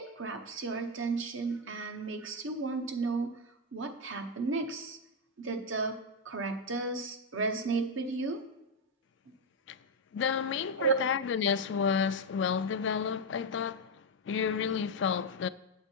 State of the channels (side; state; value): both; normal; correlation 0.04